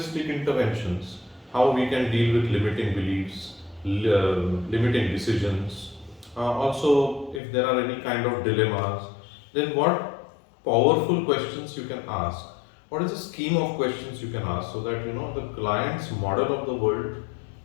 interventions, how we can deal with limiting beliefs, limiting decisions. Also, if there are any kind of dilemmas, then what powerful questions you can ask. What is the scheme of questions you can ask so that the client's model of the world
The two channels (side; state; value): right; drops out; at 7.4 s